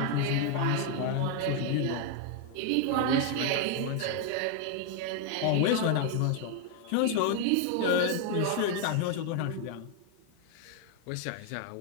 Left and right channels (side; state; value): both; different; correlation 0.00